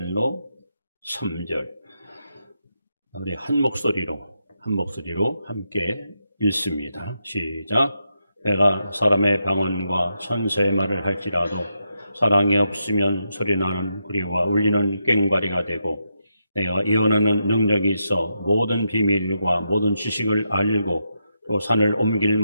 3절 우리 한 목소리로 함께 읽습니다. 시작. 내가 사람의 방언과 천사의 말을 할지라도 사랑이 없으면 소리나는 구리와 울리는 꽹과리가 되고, 내가 예언하는 능력이 있어 모든 비밀과 모든 지식을 알고 또 산을 옮길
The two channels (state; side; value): inverted; both; correlation -0.84